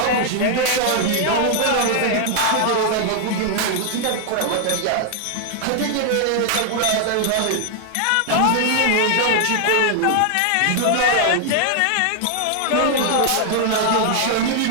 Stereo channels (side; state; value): both; different; correlation 0.00